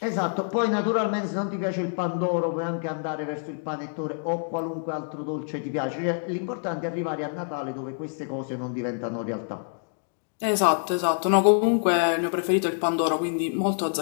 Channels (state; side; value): silent; right; digital silence